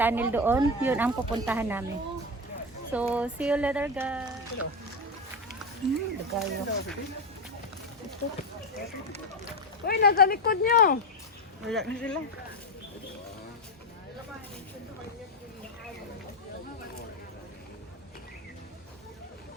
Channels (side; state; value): both; normal; correlation 0.14